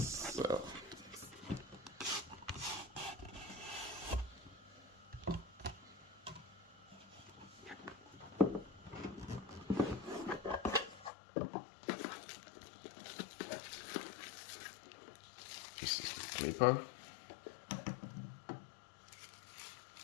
this is the clipper.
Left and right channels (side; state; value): right; drops out; at 11.1 s